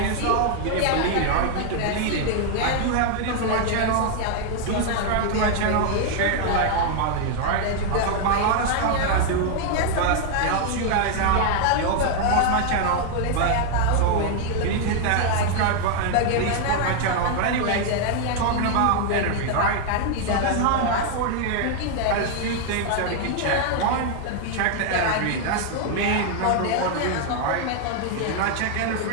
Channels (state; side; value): different; both; correlation 0.00